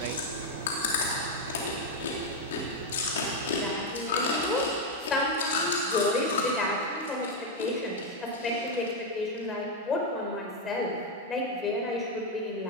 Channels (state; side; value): normal; both; correlation 0.03